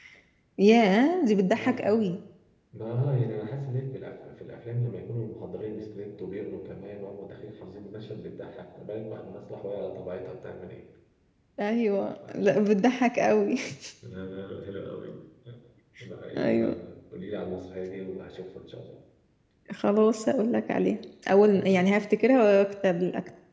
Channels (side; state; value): both; identical; correlation 1.00